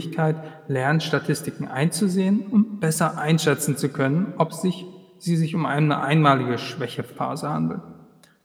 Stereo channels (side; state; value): both; identical; correlation 1.00